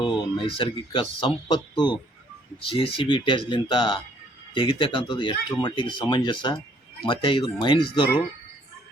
ನೈಸರ್ಗಿಕ ಸಂಪತ್ತು JCB ಇಟ್ಯಾಜ್ಲಿಂತ ತೆಗಿತಕ್ಕಂಥದ್ದು ಎಷ್ಟರ ಮಟ್ಟಿಗೆ ಸಮಂಜಸ. ಮತ್ತು ಇದು ಮೈನ್ಸ್ದವರು,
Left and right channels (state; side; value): normal; both; correlation 0.63